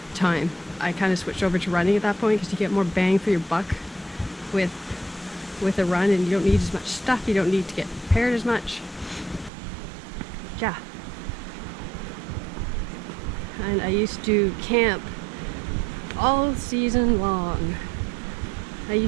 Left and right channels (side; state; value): left; drops out; at 9.5 s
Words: time. I kind of switched over to running at that point because you get more bang for your buck with a run, and you don't need as much stuff. You don't need to get prepared as much. Yeah. And I used to camp all season long. I